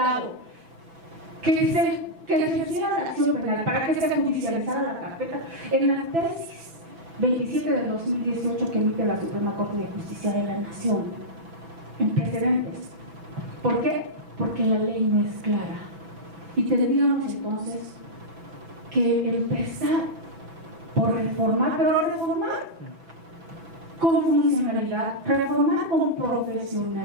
que se hiciera la acción penal para que se judicializara la carpeta en la tesis 27 del 2018 que emite la Suprema Corte de Justicia de la Nación en precedentes? ¿Por qué? Porque la ley no es clara y tendríamos entonces que empezar por reformar, pero reformar con funcionalidad, reformar con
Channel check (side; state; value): left; late; 6.0 ms